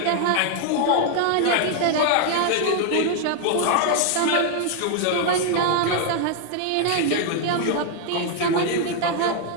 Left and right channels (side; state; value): both; different; correlation 0.00